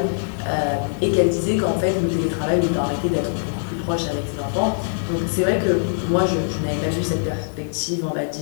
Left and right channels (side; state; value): right; silent; digital silence